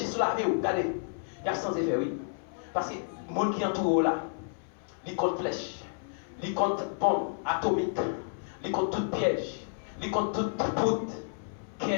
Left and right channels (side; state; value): right; silent; 57 dB below the other